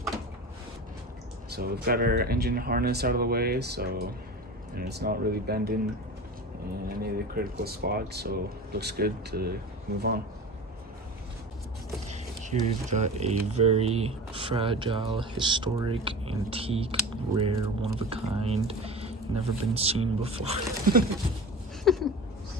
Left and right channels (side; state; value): both; normal; correlation 0.32